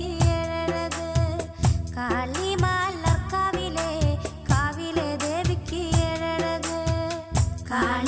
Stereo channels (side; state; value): both; identical; correlation 1.00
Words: ഏഴഴക്. കാളിമാലർക്കാവിലെ കാവിലെ ദേവിക്ക് ഏഴഴക്.